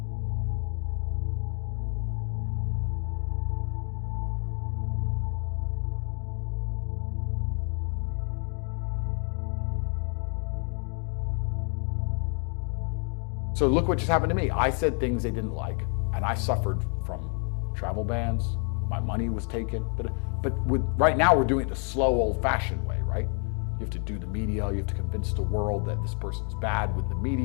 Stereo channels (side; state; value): right; quieter; 39.5 dB